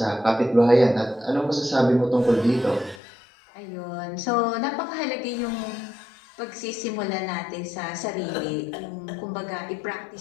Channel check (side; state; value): right; drops out; at 3.0 s